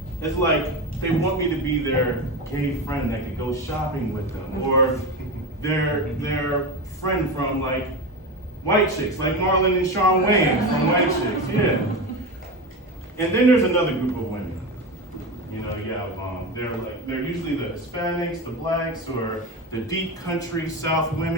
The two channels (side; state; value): both; normal; correlation 0.21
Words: like they want me to be their gay friend that could go shopping with them, or their friend from like White Chicks, like Marlon and Shawn Wayans from White Chicks, yeah. And then there's another group of women. They're usually the Hispanics, the blacks, or the deep country South